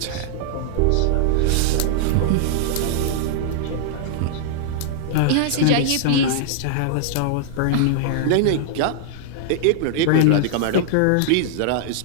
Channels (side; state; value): both; different; correlation -0.01